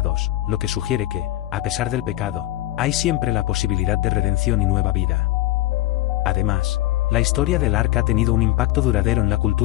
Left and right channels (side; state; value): right; quieter; 15.9 dB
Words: lo que sugiere que, a pesar del pecado, hay siempre la posibilidad de redención y nueva vida. Además, la historia del arca ha tenido un impacto duradero en la